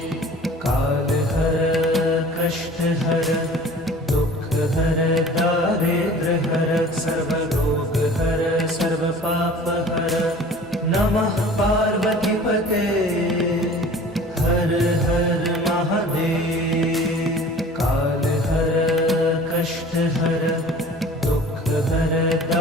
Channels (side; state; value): both; normal; correlation 0.45